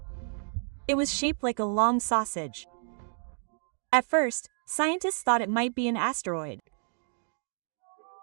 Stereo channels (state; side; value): silent; left; 58 dB below the other